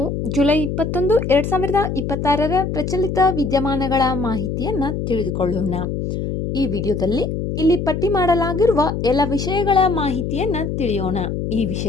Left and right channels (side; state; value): left; noise; hum, 3 dB below the sound